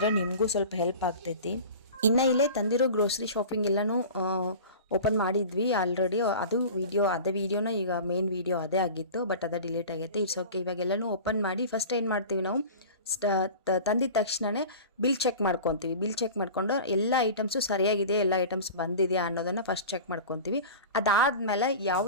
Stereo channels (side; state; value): both; inverted; correlation -0.36